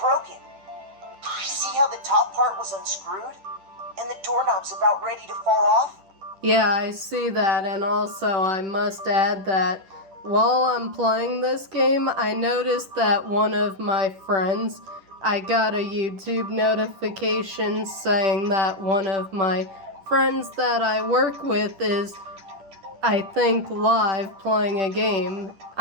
See how the top part was unscrewed? And the doorknob's about ready to fall off? Yeah, I see that, and also I must add that while I'm playing this game, I noticed that one of my friends, I got a YouTube notification saying that one of my friends that I work with is, I think, live playing a game.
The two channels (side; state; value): left; late; 10 ms